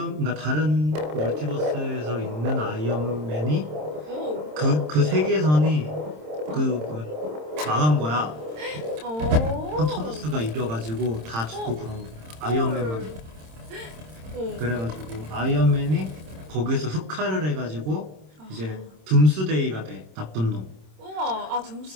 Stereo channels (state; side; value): late; left; 26 ms